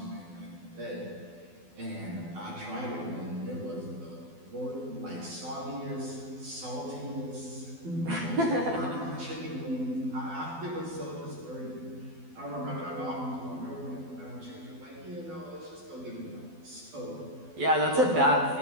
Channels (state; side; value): late; left; 12 ms